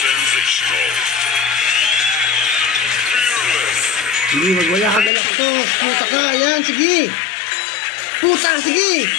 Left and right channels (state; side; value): drops out; right; at 5.1 s